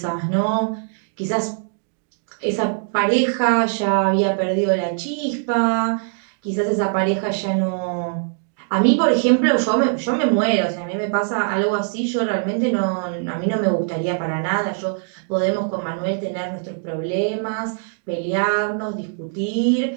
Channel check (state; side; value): silent; left; 64 dB below the other